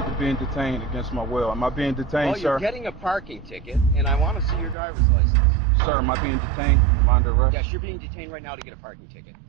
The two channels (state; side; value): drops out; left; at 4.8 s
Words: to being detained against my will. Am I being detained, well, sir? You're getting a parking ticket, and I want to see your driver's license. Sir, am I being detained? Am I under arrest? Yes, you're being detained right now to get a parking ticket.